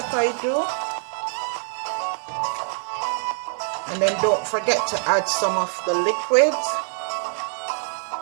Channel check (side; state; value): left; silent; digital silence